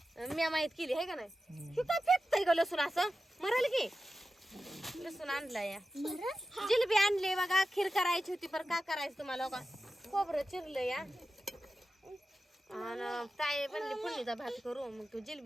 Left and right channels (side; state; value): both; normal; correlation 0.93